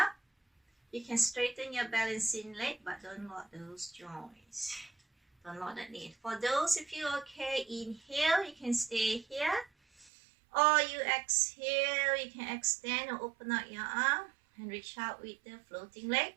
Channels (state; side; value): drops out; left; at 10.1 s